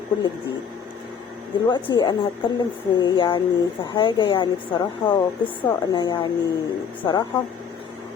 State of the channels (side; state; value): right; quieter; 7.0 dB